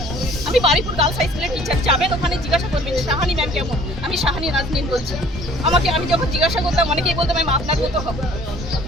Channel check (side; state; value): both; normal; correlation 0.53